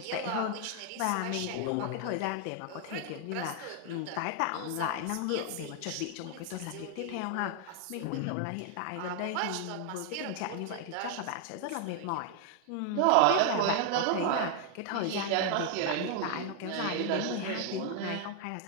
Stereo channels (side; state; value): both; different; correlation 0.00